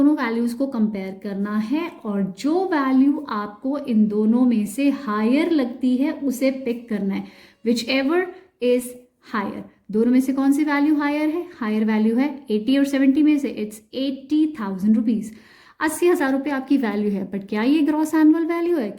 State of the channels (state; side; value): identical; both; correlation 1.00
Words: वैल्यूज़ को कंपेयर करना है और जो वैल्यू आपको इन दोनों में से हायर लगती है उसे पिक करना है, विच एवर इज हायर। दोनों में से कौन सी वैल्यू हायर है? हायर वैल्यू है 80 और 70 में से इट्स 80,000 रुपीज़। 80,000 रुपये आपकी वैल्यू है, बट क्या ये ग्रॉस एनुअल वैल्यू है?